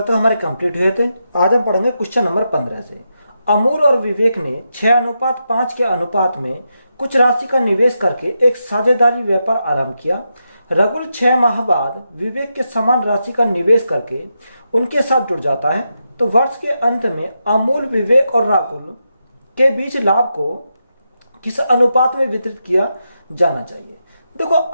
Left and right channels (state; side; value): inverted; both; correlation -0.86